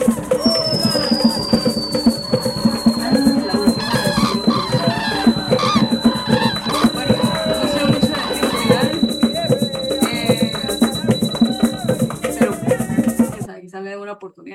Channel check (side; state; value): both; identical; correlation 1.00